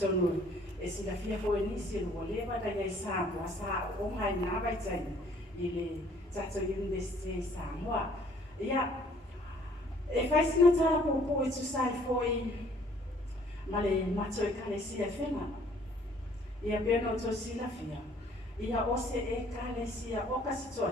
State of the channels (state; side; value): normal; both; correlation 0.59